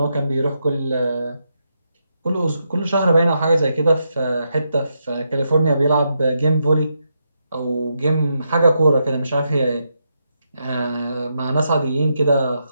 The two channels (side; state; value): both; inverted; correlation -0.82